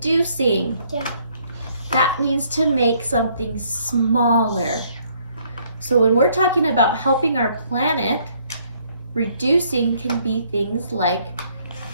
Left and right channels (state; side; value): inverted; both; correlation -0.66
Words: That means to make something smaller. So when we're talking about helping our planet, reducing can be things like